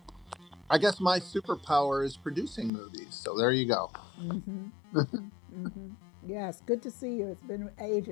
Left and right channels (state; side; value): drops out; right; at 2.7 s